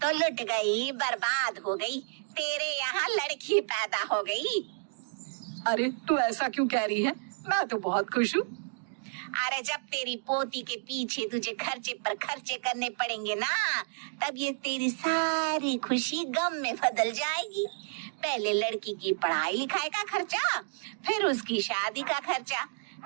लुट गई, बर्बाद हो गई, तेरे यहाँ लड़की पैदा हो गई। अरे तू ऐसा क्यों कह रही है, मैं तो बहुत खुश हूँ। अरे जब तेरी पोती के पीछे तुझे खर्चे पर खर्चे करने पड़ेंगे ना, तब ये तेरी सारी खुशी गम में बदल जाएगी। पहले लड़की की पढ़ाई लिखाई का खर्चा, फिर उसकी शादी का खर्चा।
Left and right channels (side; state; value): left; silent; digital silence